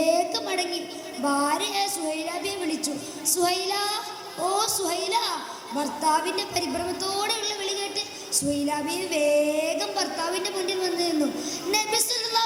മടങ്ങി. ഭാര്യയെ സുഹൈലാബിയെ വിളിച്ചു. സുഹൈല, ഓ സുഹൈല. ഭർത്താവിൻ്റെ പരിഭ്രമത്തോടെയുള്ള വിളി കേട്ട് സുഹൈലാബിയെ വേഗം ഭർത്താവിൻ്റെ മുന്നിൽ വന്നു നിന്നു. നബി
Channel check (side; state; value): both; identical; correlation 1.00